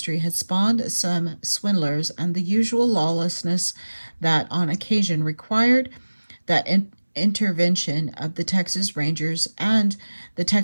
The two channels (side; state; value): both; inverted; correlation -1.00